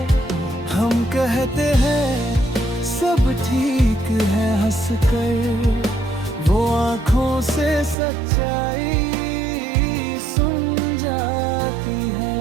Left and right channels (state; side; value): drops out; left; at 8.0 s